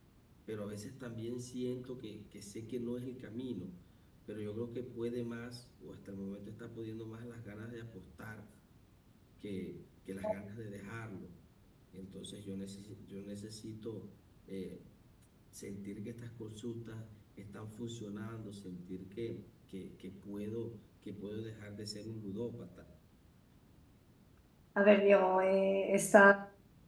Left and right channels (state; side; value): identical; both; correlation 1.00